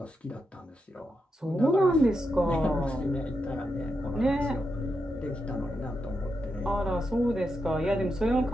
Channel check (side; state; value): both; normal; correlation 0.85